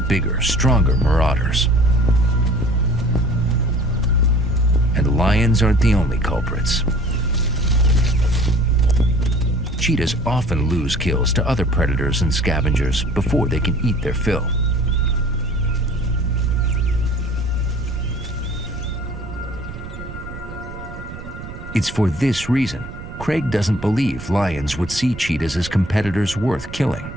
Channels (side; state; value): right; noise; rumble, 12 dB below the sound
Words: stronger marauders. And lions aren't the only culprits. Cheetahs often lose kills to other predators and scavengers before they can eat their fill. It's for this reason Craig doesn't believe lions would see cheetahs as competitors worth killing.